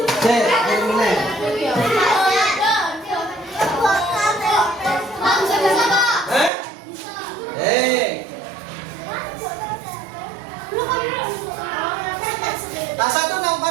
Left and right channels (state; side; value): drops out; left; at 6.5 s